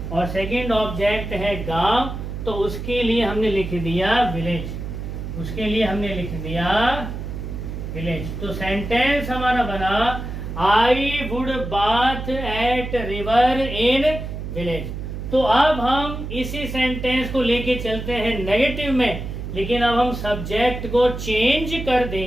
और सेकंड ऑब्जेक्ट है गांव। तो उसके लिए हमने लिख दिया विलेज। उसके लिए हमने लिख दिया विलेज। तो सेंटेंस हमारा बना I would bath at river in village. तो अब हम इसी सेंटेंस को लेके चलते हैं नेगेटिव में, लेकिन अब हम सब्जेक्ट को चेंज कर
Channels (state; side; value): noise; right; hum, 7 dB below the sound